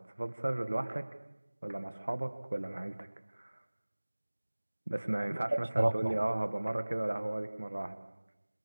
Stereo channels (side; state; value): both; inverted; correlation -1.00